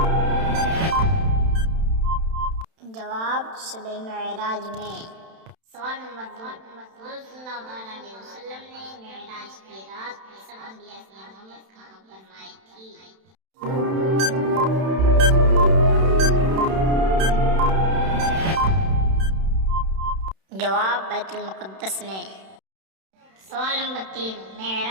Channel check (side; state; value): left; late; 31 ms